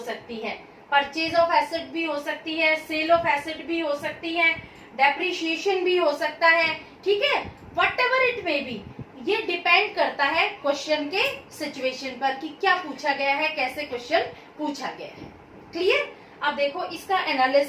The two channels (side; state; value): both; identical; correlation 1.00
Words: है, परचेज ऑफ एसेट भी हो सकती है, सेल ऑफ एसेट भी हो सकती है, डेप्रिसिएशन भी हो सकता है, ठीक है। What ever it may be, ये डिपेंड करता है क्वेश्चन के सिचुएशन पर कि क्या पूछा गया है, कैसे क्वेश्चन पूछा गया है, क्लियर। अब देखो इसका